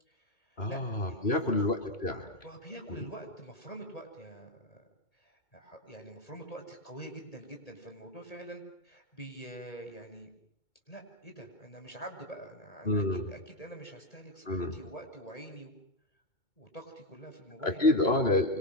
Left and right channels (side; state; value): right; late; 2.2 ms